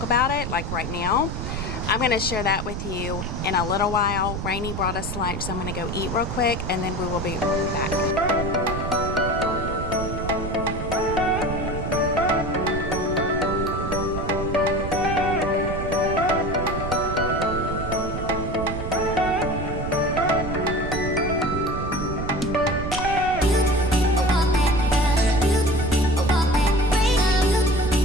about it, like right now. I'm going to share that with you in a little while. Rainey brought us lunch, so I'm going to go eat real quick, and then we will be back.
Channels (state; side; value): noise; right; rumble, 5 dB below the sound